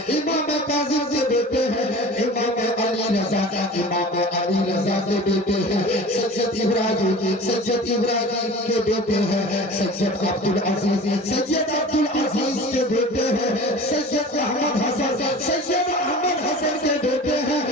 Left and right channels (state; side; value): normal; both; correlation 0.39